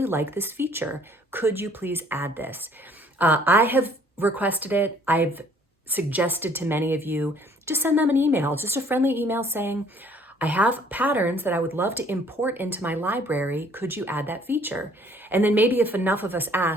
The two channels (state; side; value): normal; both; correlation 0.59